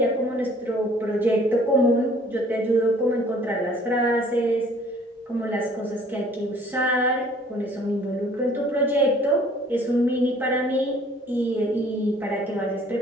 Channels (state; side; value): normal; both; correlation 0.55